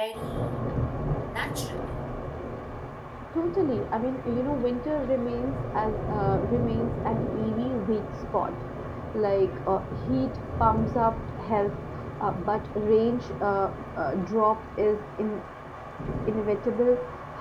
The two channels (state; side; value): identical; both; correlation 1.00